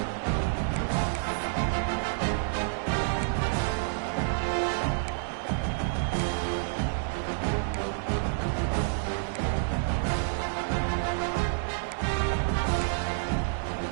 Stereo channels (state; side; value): silent; left; digital silence